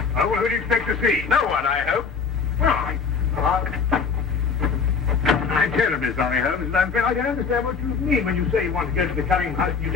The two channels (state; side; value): quieter; right; 5.6 dB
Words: Oh, well, who do you expect to see? No one, I hope. Well, I'm terribly sorry, Holmes. I don't understand what you mean when you say you want to go to the Cunningham house.